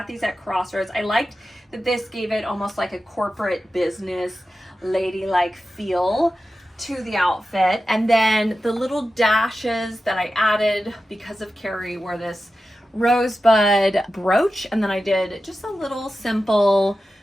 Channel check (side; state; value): both; normal; correlation 0.93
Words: these at Crossroads. I liked that this gave it almost like a corporate business ladylike feel to the outfit. And then the little dashes that I added because of Carrie were this rosebud brooch, and then I did just a little simple